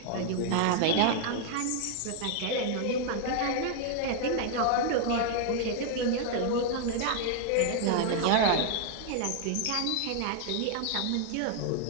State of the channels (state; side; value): different; both; correlation 0.00